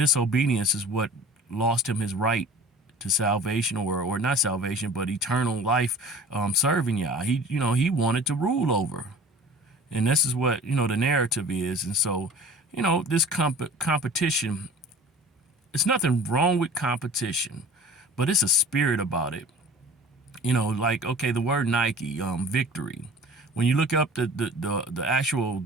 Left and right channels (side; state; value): both; normal; correlation 0.43